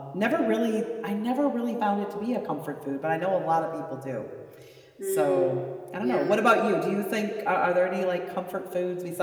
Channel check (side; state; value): both; identical; correlation 1.00